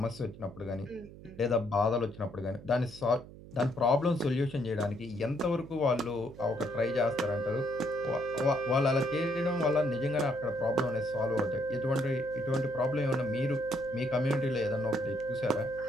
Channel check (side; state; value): right; noise; hum, 17 dB below the sound